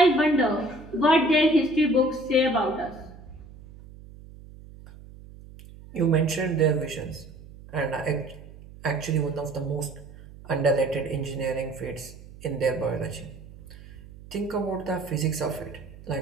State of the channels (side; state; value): right; noise; hum, 18 dB below the sound